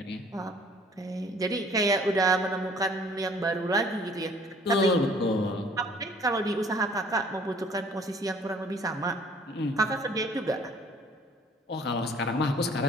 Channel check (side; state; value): both; normal; correlation 0.56